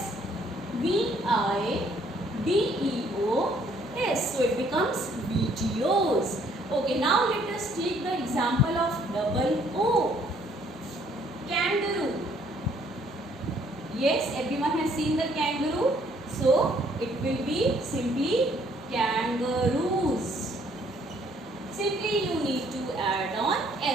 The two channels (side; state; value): both; normal; correlation 0.64